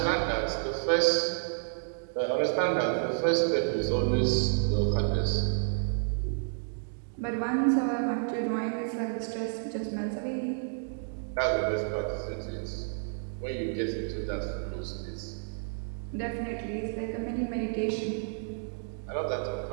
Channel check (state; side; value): silent; left; digital silence